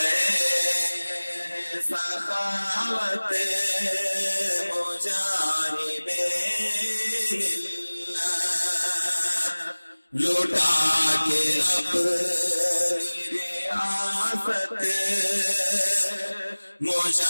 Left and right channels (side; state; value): both; inverted; correlation -1.00